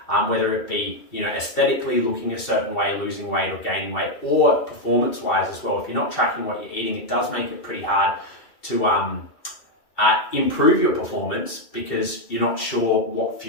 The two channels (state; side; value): late; right; 2.7 ms